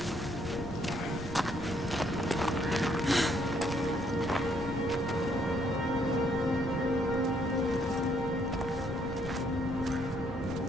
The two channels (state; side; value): noise; left; rumble, 10 dB below the sound